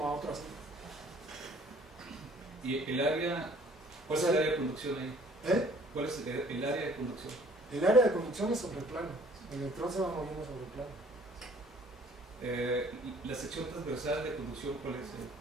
a otro así. ¿Y el área? ¿Cuál es el área de conducción ahí? ¿Cuál es el área de conducción? El área de conducción es sobre el plano. El electrón se va moviendo sobre el plano. La sección transversal de conducción, ¿cuál es?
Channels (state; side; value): normal; both; correlation 0.55